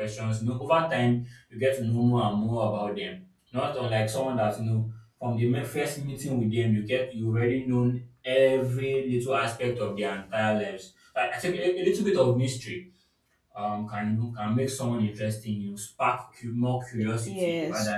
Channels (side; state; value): both; identical; correlation 1.00